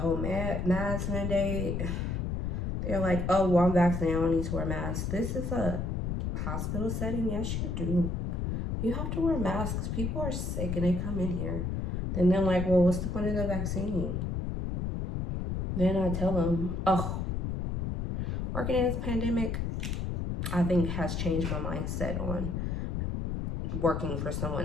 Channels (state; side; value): noise; left; rumble, 1 dB below the sound